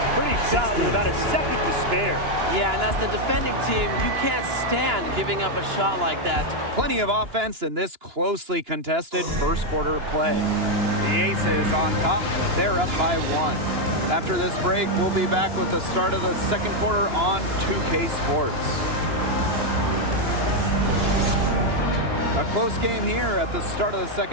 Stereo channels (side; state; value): left; late; 2.9 ms